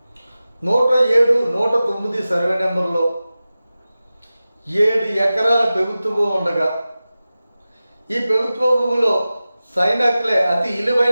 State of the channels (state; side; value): inverted; both; correlation -0.95